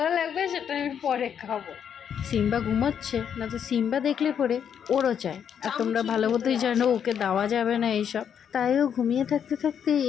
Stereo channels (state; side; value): quieter; right; 8.2 dB